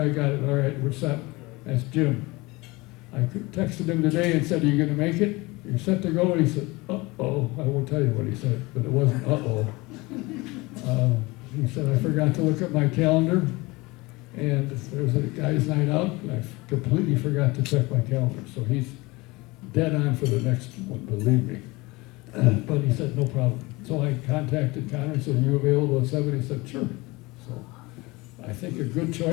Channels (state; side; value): quieter; right; 23.1 dB